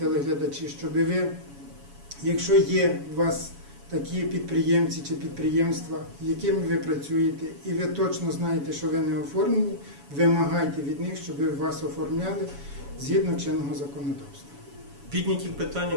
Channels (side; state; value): left; late; 7.1 ms